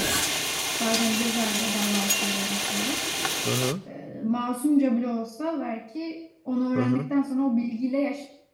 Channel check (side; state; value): both; identical; correlation 1.00